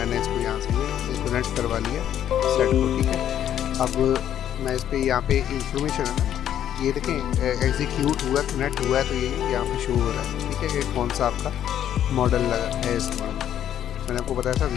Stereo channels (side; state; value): right; quieter; 10.5 dB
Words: इसको यहाँ से ये कनेक्ट करवा लिया सेट को, ठीक है। अब मैं इस पर यहाँ पे इंफॉर्मेशन है ना, ये देखें एग्जीक्यूट हुआ, कनेक्ट हुआ है, तो ये यहाँ पे शो हो रहा है, ठीक है, कि कौन सा आपका मॉडल लगा है इसमें। मैंने आपको बताया था